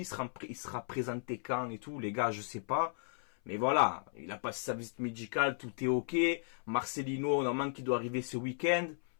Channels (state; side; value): silent; right; 54 dB below the other